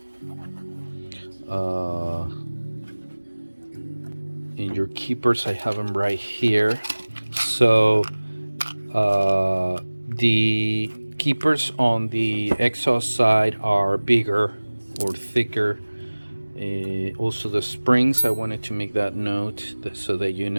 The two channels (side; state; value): both; inverted; correlation -1.00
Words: And your keepers, I have them right here. So the keepers on the exhaust side are bigger or thicker. Also the springs, I wanted to make that note so that you